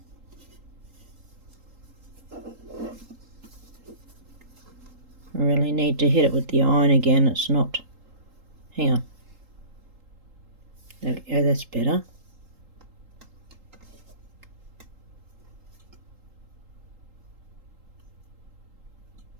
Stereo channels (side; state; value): left; late; 3.8 ms